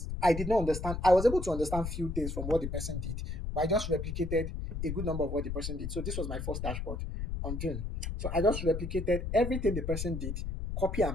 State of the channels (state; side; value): noise; left; rumble, 4 dB below the sound